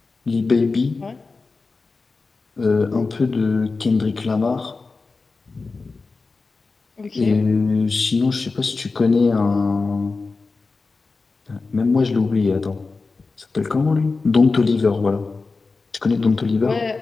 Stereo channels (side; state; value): right; quieter; 4.0 dB